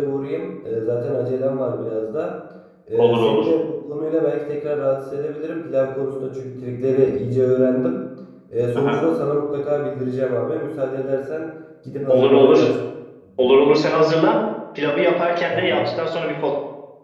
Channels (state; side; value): identical; both; correlation 1.00